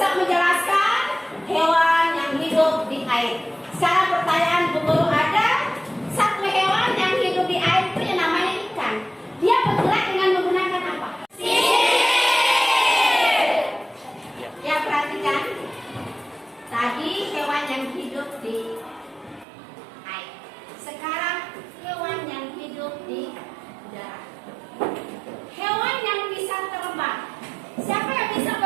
menjelaskan hewan yang hidup di air. Sekarang pertanyaan Bu Guru, ada satu hewan yang hidup di air itu yang namanya ikan. Dia bergerak dengan menggunakan apa? Ya, perhatikan. Tadi hewan yang hidup di air. Sekarang hewan yang hidup di udara. Hewan yang bisa terbang. Siapa yang bisa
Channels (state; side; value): drops out; left; at 19.5 s